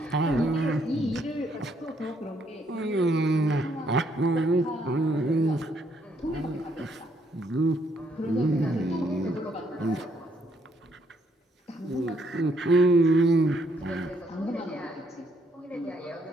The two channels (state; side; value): normal; both; correlation 0.71